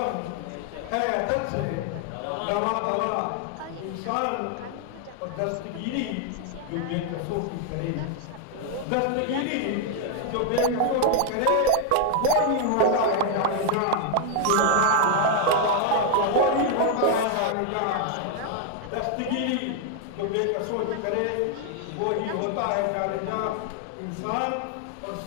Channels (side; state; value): both; different; correlation 0.00